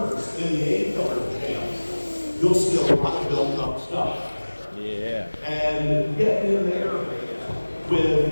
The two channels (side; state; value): both; inverted; correlation -1.00